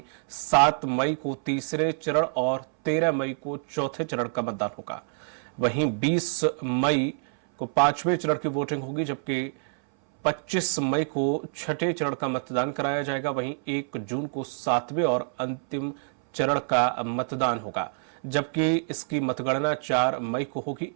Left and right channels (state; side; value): silent; left; 60 dB below the other